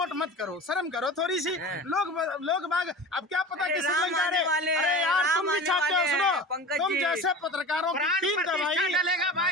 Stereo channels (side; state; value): both; normal; correlation 0.34